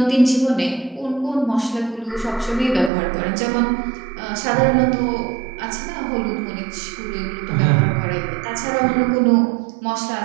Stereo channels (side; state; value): left; drops out; at 2.9 s